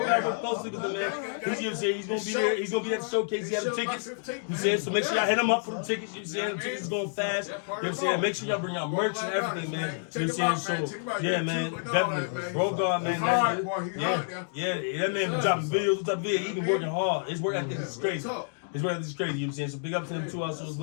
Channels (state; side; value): silent; right; digital silence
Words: works closely with them, man. He's, you know what I'm saying? He's going to be there. He's going to be at the showcase. He has the tickets. You know what I'm saying? So make sure y'all hit him up for the tickets. You know what I'm saying? The tickets going fast. You know what I'm saying? Make sure y'all bring out merch and everything, man. You know what I'm saying? So, yeah, man, definitely. Bro God, man. That man been dropping videos. He been working hard. His work ethic is crazy. His work ethic is crazy, you know what I'm saying? So big up to them too also as